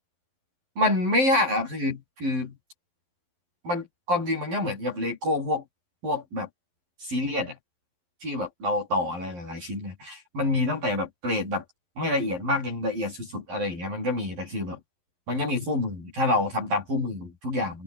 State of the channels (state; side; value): late; left; 11 ms